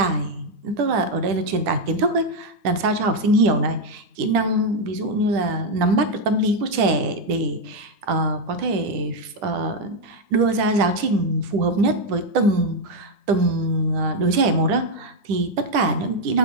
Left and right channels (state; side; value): late; left; 10 ms